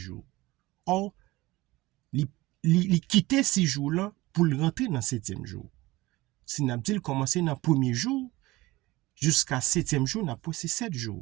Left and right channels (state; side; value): quieter; left; 19.7 dB